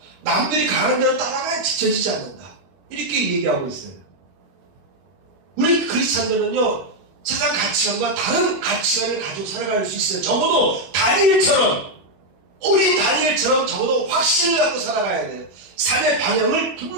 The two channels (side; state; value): left; late; 21 ms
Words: 남들이 가는 대로 따라가야 지쳐지지 않는다. 이렇게 얘기하고 있어요. 우리 크리스찬들은요 세상 가치관과 다른 가치관을 가지고 살아갈 수 있어요. 적어도 다니엘처럼 어린 다니엘처럼 적어도 확신을 갖고 살아가야 돼요. 삶의 방향을